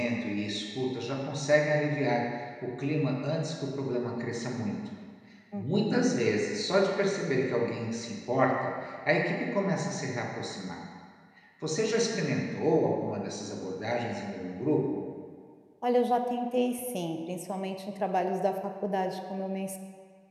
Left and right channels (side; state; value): both; identical; correlation 1.00